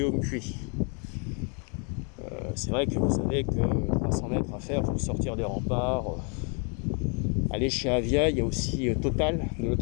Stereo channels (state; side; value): quieter; right; 37.9 dB